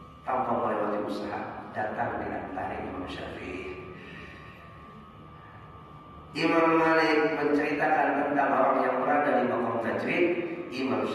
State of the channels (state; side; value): identical; both; correlation 1.00